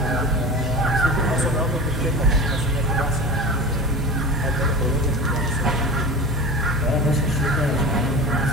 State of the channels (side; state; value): both; normal; correlation 0.32